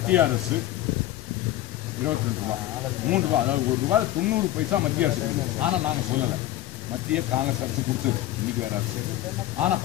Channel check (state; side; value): quieter; right; 14.5 dB